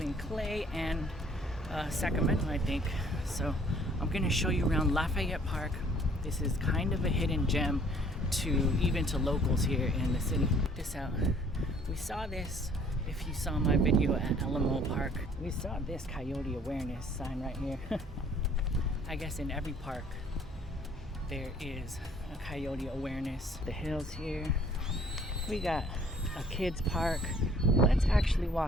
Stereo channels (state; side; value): normal; both; correlation 0.57